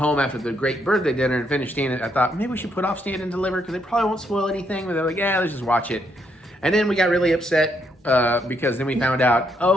after the great birthday dinner and finish Stand. I thought maybe we should put off Stand and Deliver because they probably won't spoil anything. But they're like, yeah, let's just watch it. And then we got really upset because then we found out,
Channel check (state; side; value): normal; both; correlation 0.75